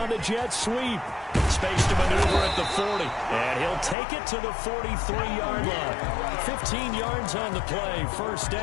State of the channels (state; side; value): drops out; right; at 4.0 s